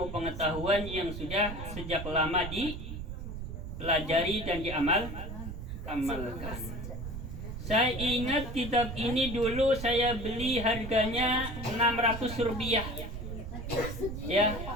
pengetahuan yang sudah sejak lama dipelajari dan diamalkan. Saya ingat kitab ini dulu saya beli harganya 600 rupiah. Ya,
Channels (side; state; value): right; noise; rumble, 7 dB below the sound